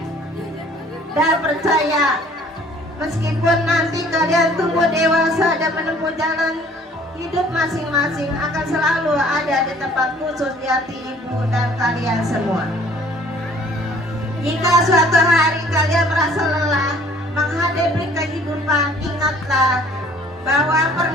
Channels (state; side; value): normal; both; correlation 0.55